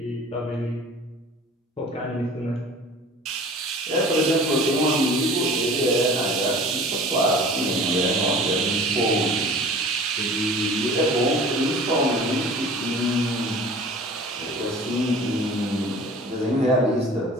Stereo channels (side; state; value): both; normal; correlation 0.43